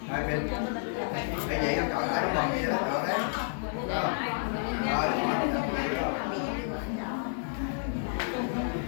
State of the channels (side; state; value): right; silent; digital silence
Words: hai bên cái vậy nó cởi lại bằng gì đó cởi đấy